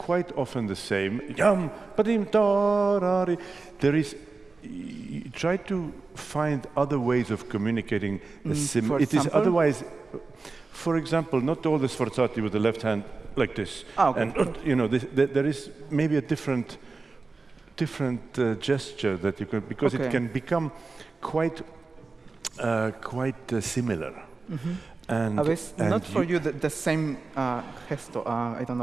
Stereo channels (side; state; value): left; quieter; 3.9 dB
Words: often the same. There is. Try to find other ways of communicating. It is otherwise. For example, not all the sforzati with the left hand like this. Okay. And there is maybe a different gesture that you can, because it can become quite similar. And not for you the same gesto. I don't